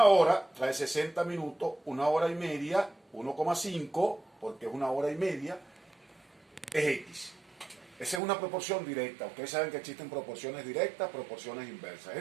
hora trae 60 minutos, una hora y media, 1,5, porque es una hora y media, es X. Esa es una proporción directa. Ustedes saben que existen proporciones directas, proporciones inversas.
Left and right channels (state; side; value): drops out; left; at 8.2 s